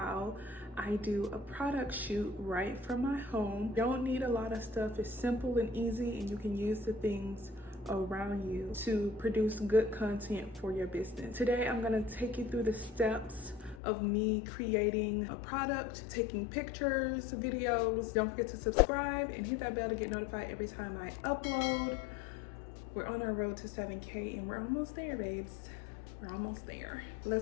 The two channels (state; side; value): drops out; right; at 13.8 s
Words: I do a product shoot right from my home. Don't need a lot of stuff, it's simple and easy, and you can use the things around you to produce good content for your business. Today I'm going to take you through the steps of me creating a product, taking pictures, videos. Don't forget to subscribe and hit that bell to get notified every time I upload. We're on our road to 7K and we're almost there, babes. We're almost there.